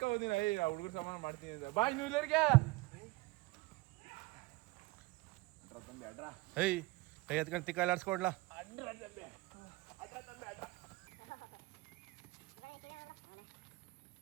ಹುಡುಗರು ಸಮಾನ ಮಾಡ್ತೀನಿ ಅಂತ. ಬಾ ಇನ್ನು ಇಲ್ಲರಿಗೆ ಏಯ್ ಕೈ ಎತ್ಕೊಂಡು ತಿಕ್ಕ ಆಡ್ಸ್ಕೊಡ್ಲಾ.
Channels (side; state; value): left; quieter; 22.2 dB